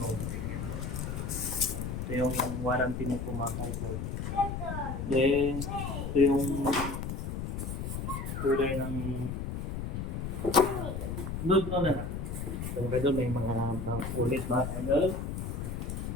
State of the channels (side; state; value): left; noise; rumble, 4 dB below the sound